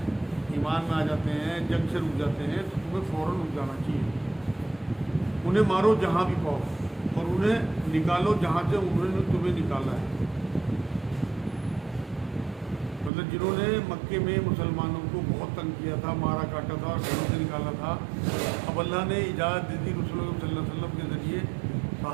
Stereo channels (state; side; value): drops out; left; at 13.1 s